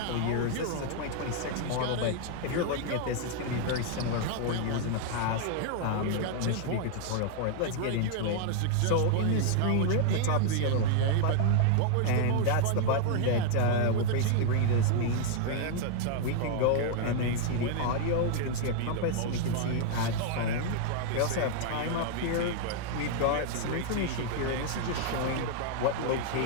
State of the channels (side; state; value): both; different; correlation 0.00